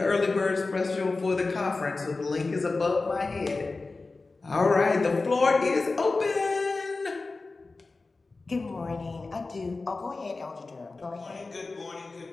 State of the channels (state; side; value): quieter; right; 3.6 dB